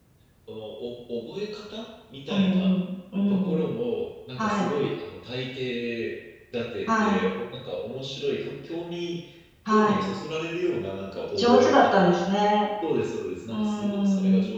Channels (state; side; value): identical; both; correlation 1.00